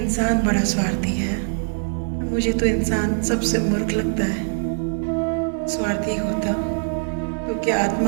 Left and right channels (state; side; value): silent; left; 64 dB below the other